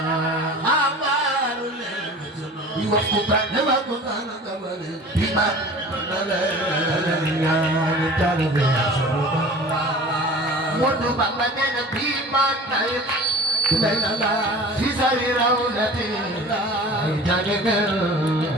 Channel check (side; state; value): both; normal; correlation 0.40